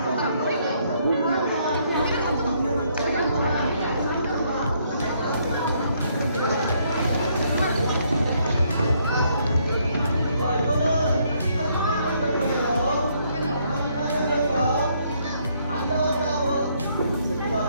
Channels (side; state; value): both; inverted; correlation -0.70